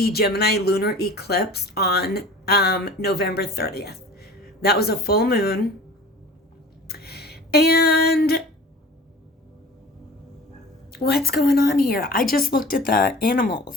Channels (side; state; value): both; normal; correlation 0.41